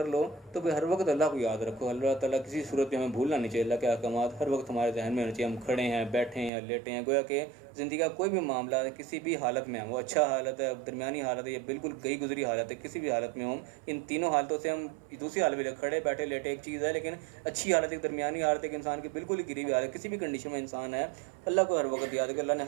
لو تو پھر ہر وقت اللہ کو یاد رکھو. اللہ تعالیٰ کسی صورت میں ہمیں بھولنا نہیں چاہیے. اللہ کے احکامات ہر وقت ہمارے ذہن میں ہونے چاہیے. ہم کھڑے ہیں, بیٹھے ہیں, لیٹے ہیں, گویا کہ زندگی کا کوئی بھی معاملہ ہے, کسی بھی حالت میں ہم, وہ اچھا حالت ہے, درمیانی حالت ہے, یا بالکل گئی گزری حالت ہے, کسی بھی حالت میں ہوں, ان تینوں حالتوں سے ہم دوسری حالت میں کھڑے بیٹھے لیٹے ایک چیز ہے, لیکن اچھی حالت ایک درمیانی حالت ہے کہ انسان کی بالکل ہی گری ہوئی حالت, کسی بھی کنڈیشن میں انسان ہے, اللہ کو ہر وقت یاد ہے کہ اللہ نے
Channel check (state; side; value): drops out; left; at 6.5 s